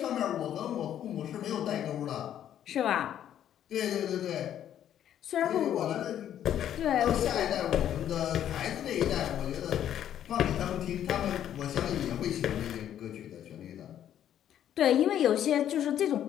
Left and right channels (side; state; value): right; quieter; 10.6 dB